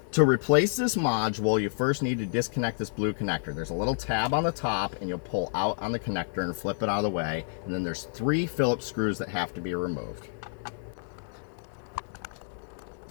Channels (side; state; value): right; silent; digital silence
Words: To replace this module, you first need to disconnect this blue connector. There's a little tab on the top, and you'll pull out on the connector and flip it out of the way, and then there's 3 Phillips screws that have to be removed.